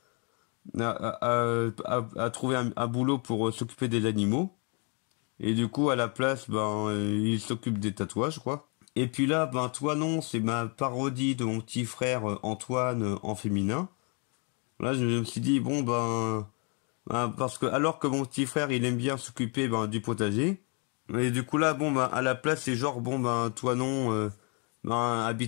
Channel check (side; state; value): right; quieter; 36.2 dB